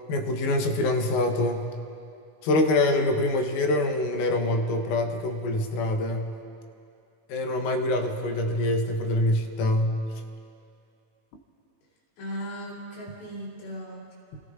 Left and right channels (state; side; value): late; right; 19 ms